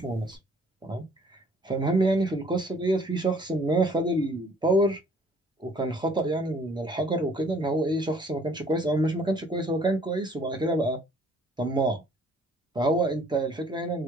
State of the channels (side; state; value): both; normal; correlation 0.58